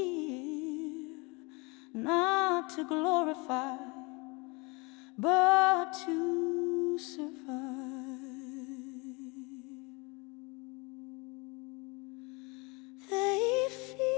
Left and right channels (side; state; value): right; quieter; 27.8 dB